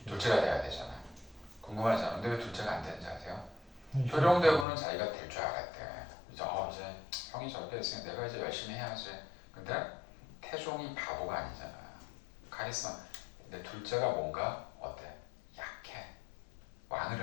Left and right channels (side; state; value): right; drops out; at 4.7 s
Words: 둘째가 돼야 되잖아. 궁금하잖아. 근데 왜 둘째가 안 되는지 아세요? 효령대군은 자기가 될 줄 알았대. 이제 형이 저렇게 했으니 내가 이제 열심히 해야지. 근데 태종이 바보가 아니잖아. 카리스마. 근데 둘째가 뭔가 어때? 약해. 왕을